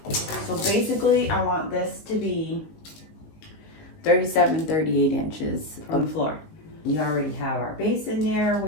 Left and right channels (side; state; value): right; late; 19 ms